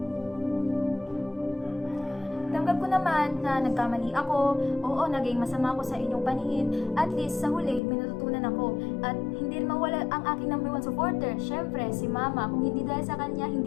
Tanggap ko naman na nagkamali ako, oo, naging masama ako sa inyong paningin, at least sa huli, may natutunan ako. At hindi rin mawala ang aking number one supporter, syempre, si Mama. Kung hindi dahil sa kanya,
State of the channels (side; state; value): right; drops out; at 7.8 s